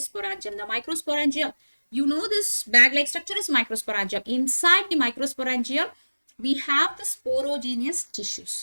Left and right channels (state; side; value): inverted; both; correlation -1.00